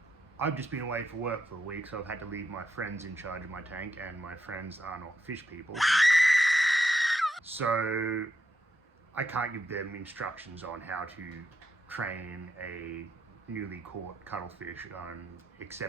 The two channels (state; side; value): normal; both; correlation 0.83